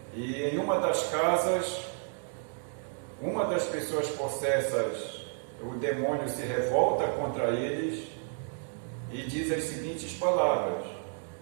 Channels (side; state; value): left; silent; 56 dB below the other